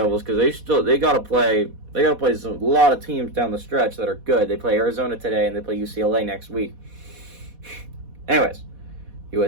because they got to play a lot of teams down the stretch that are good. They play Arizona today and they play UCLA next week. Anyways,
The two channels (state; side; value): late; left; 4.1 ms